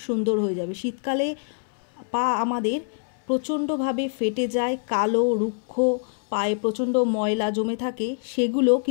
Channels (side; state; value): right; silent; 62 dB below the other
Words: हये जाबे। शीतकाले पा आमादेर प्रचंडभावे फेटे जाए, कालो रुक्ष पाए प्रचंड मयला जमे थाके, सेगुलो